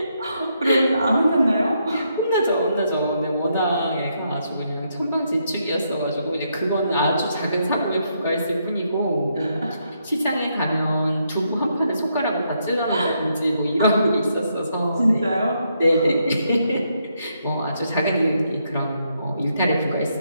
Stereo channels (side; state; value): both; inverted; correlation -0.77